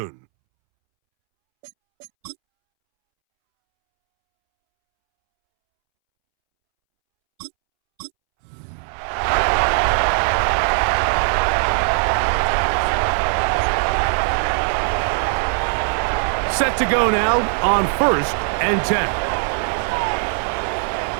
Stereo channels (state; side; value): silent; left; 66 dB below the other